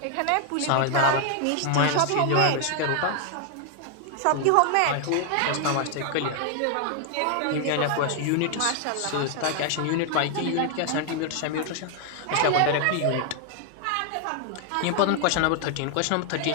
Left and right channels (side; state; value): both; different; correlation 0.00